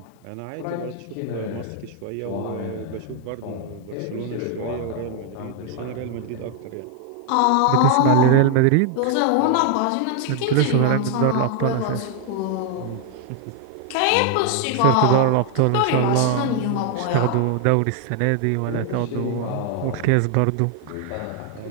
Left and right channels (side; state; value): both; different; correlation 0.00